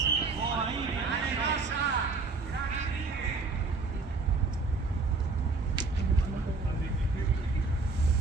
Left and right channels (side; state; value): left; quieter; 4.0 dB